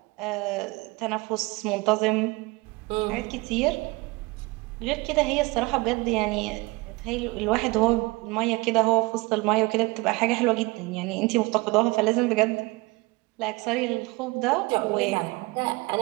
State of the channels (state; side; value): quieter; left; 24.2 dB